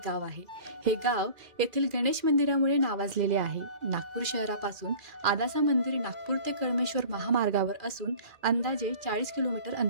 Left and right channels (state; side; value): late; left; 2.4 ms